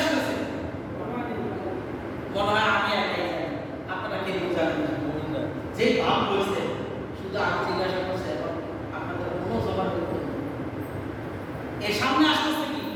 মনে হয় আমি একাই জানি, আপনারা কে বোঝাবেন না। যে ভাব হয়েছে শুধু আমি জিজ্ঞাসা করছি, এখন আপনাদের কোনো জবাব করতে এর সামনে আসতেছে কি?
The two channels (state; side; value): identical; both; correlation 1.00